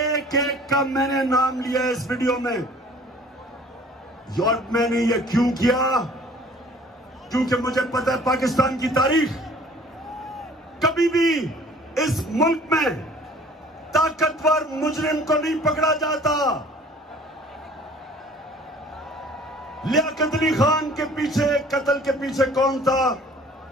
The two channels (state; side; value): normal; both; correlation 0.51